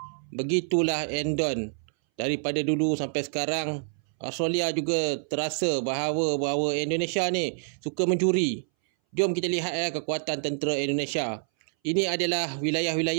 Begitulah endon. Daripada dulu sampai sekarang, Australia juga terasa bahawa Indonesia ni suka mencuri. Jom kita lihat ya kekuatan tentera Indonesia. Ini adalah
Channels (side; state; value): left; silent; 60 dB below the other